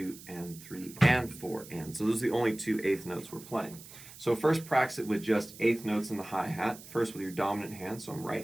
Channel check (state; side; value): noise; right; hiss, 17 dB below the sound